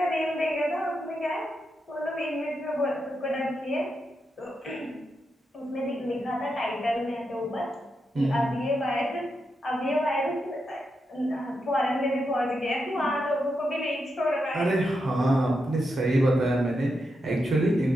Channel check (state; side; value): normal; both; correlation 0.85